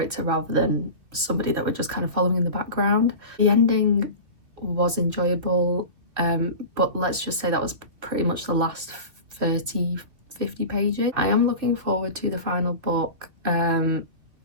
rather than somebody that we're just kind of following in the background. The ending was enjoyable, but let's just say that was pretty much the last 30-50 pages. I am looking forward to the final book.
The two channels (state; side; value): late; left; 2.9 ms